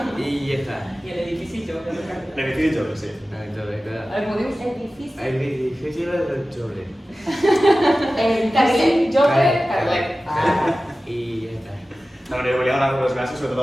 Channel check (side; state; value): both; normal; correlation 0.96